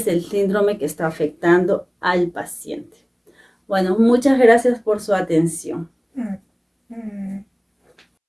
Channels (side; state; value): both; identical; correlation 1.00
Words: el síndrome que está afectando al paciente. Bueno, muchas gracias por su atención.